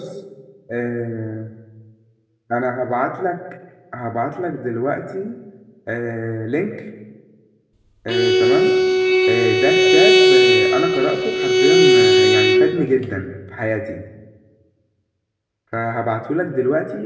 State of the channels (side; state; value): both; identical; correlation 1.00